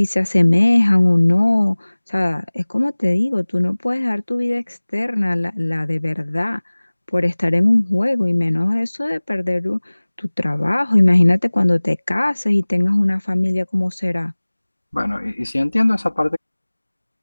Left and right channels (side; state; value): both; inverted; correlation -1.00